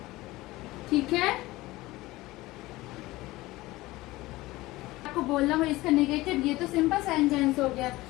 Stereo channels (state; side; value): quieter; right; 19.1 dB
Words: ठीक है। आपको बोलना हो इसका नेगेटिव, ये तो सिंपल सेंटेंस हो